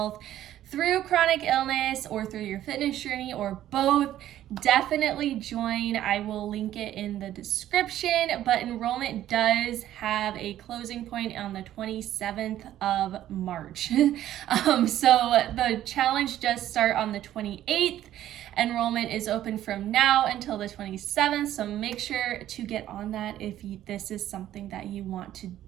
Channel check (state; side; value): quieter; left; 12.6 dB